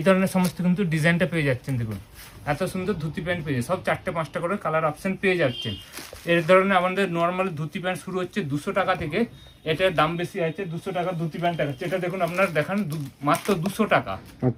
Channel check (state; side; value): identical; both; correlation 1.00